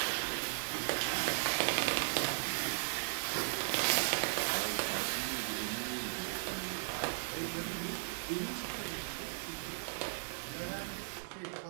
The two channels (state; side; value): silent; left; digital silence